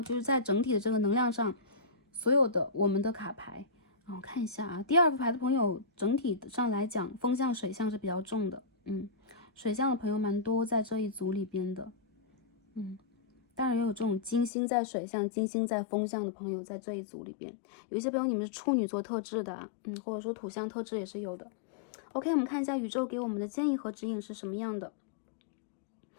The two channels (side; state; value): right; drops out; at 14.5 s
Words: 就是在整体的这个能量上，所有的我们的卡牌我看一下第2副牌的朋友，整体上来讲，风象、水象是比较重的，水象的朋友蛮多在这一组里边的，当然也有这种金星在水象、金星在风象的朋友在这一组里边。有一些朋友你们是处女座特质的或者说土象特质也是有的。OK， 我们看一下宇宙给我们的建议和指引是什么样的。